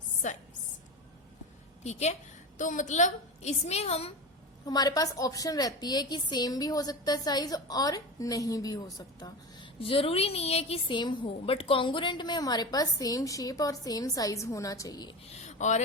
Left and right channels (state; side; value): normal; both; correlation 0.25